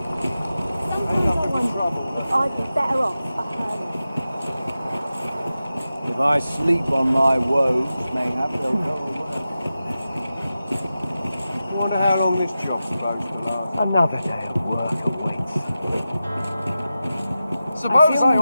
If I sleep on my woes, mayhap they'll go away. I wonder how long this job's supposed to last. Another day of work awaits. Suppose I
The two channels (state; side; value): inverted; both; correlation -0.93